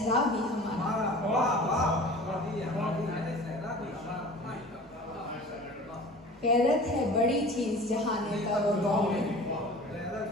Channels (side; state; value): both; normal; correlation 0.41